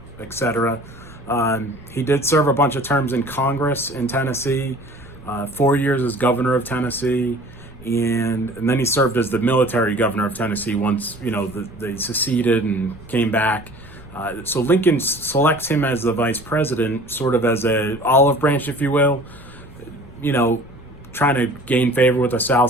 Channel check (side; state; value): left; noise; rumble, 23 dB below the sound